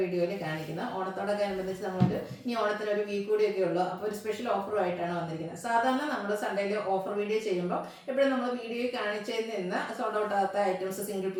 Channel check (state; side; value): identical; both; correlation 1.00